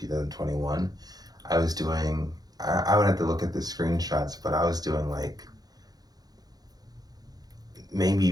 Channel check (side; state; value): left; late; 0.19 ms